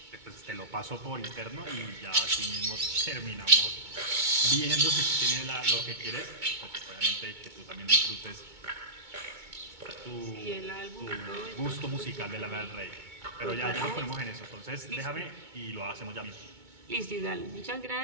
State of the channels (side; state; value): left; late; 2.2 ms